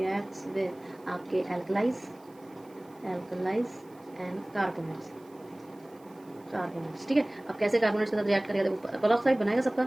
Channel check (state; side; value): noise; right; hiss, 30 dB below the sound